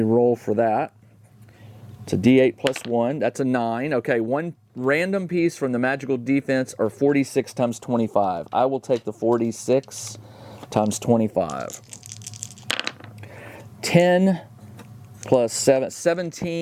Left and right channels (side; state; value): both; identical; correlation 1.00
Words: roll for that. It's a D8 +1. That's a 9. Okay, one random piece from the magical defense or 46 times 25. I will take the 46 times 25. 10 plus 7,